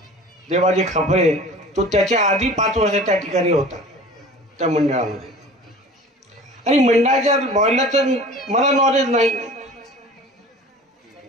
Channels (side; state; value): both; normal; correlation 0.42